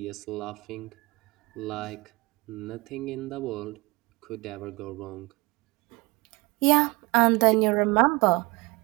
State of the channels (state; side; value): quieter; left; 24.7 dB